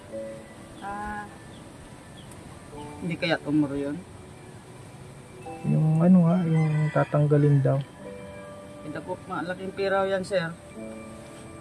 Hindi kaya tumuro yun. Yung yung tatanggalin daw. Ito po, malaking piraw yan sir.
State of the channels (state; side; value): identical; both; correlation 1.00